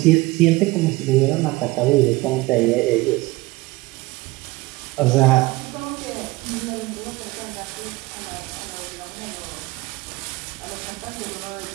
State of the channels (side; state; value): left; quieter; 21.1 dB